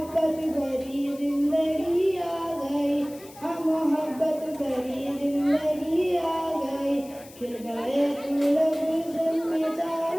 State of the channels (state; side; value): noise; left; hiss, 21 dB below the sound